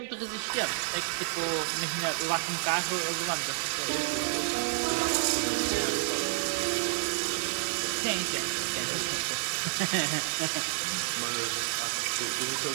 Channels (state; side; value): silent; left; digital silence